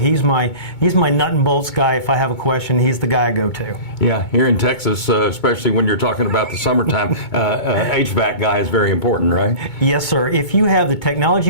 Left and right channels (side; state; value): right; late; 2.2 ms